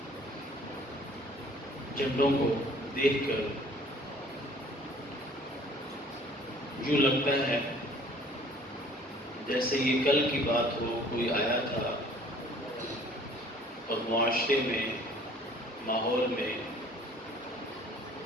جھنڈوں کو دیکھ کر یوں لگتا ہے جیسے یہ کل کی بات ہو. کوئی آیا تھا اور معاشرے میں، ماحول میں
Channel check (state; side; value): normal; both; correlation 0.53